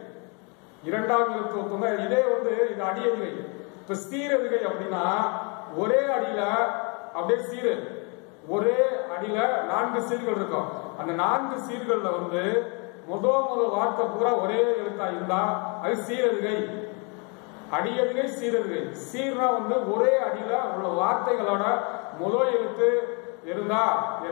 இரண்டாவது எழுத்து ஒத்து வந்தா இதே வந்து இது அடி எதுகை. இப்ப சீர் எதுகை அப்படின்னா ஒரே அடியில அப்படியே சீரு, ஒரே அடியில 4 சீர்கள் இருக்கும். அந்த 4 சீர்கள்ல வந்து முதல் வார்த்தை பூரா ஒரே எழுத்தா இருந்தா அது சீரெதுகை. அடியதுகை சீரெதுகை. சீர்னா வந்து ஒரே அடியில உள்ள வார்த்தைகளோட முதல் எழுத்து இருந்தா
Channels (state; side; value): quieter; right; 33.8 dB